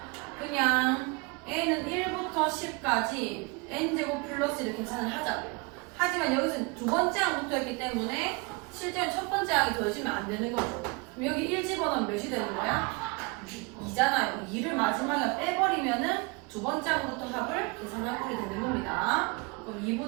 그냥 n은 1부터 10까지 n제곱 플러스 1을 계산을 하자고요. 하지만 여기서 두 번째 항부터 했기 때문에 실제로 첫 번째 항이 더해지면 안 되는 거죠. 그럼 여기 1 집어넣으면 몇이 되는 거야? 2잖아요. 2를 마지막에 빼버리면은 두 번째 항부터 합을 계산할 꼴이 되는 겁니다. 그럼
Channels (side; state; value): left; quieter; 28.4 dB